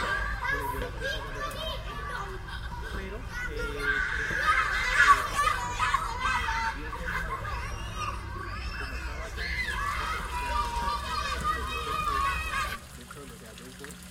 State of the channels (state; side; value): identical; both; correlation 1.00